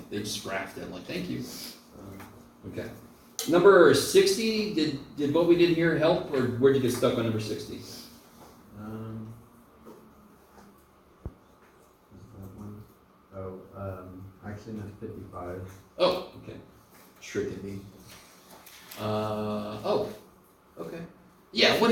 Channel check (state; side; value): identical; both; correlation 1.00